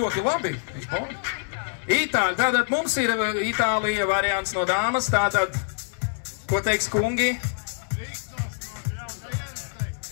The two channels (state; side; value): silent; right; digital silence